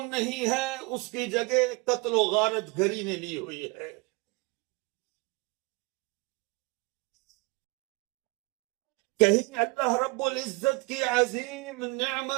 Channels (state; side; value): quieter; left; 27.0 dB